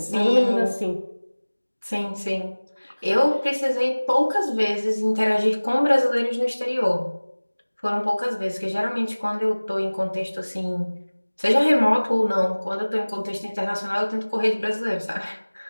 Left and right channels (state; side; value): inverted; both; correlation -1.00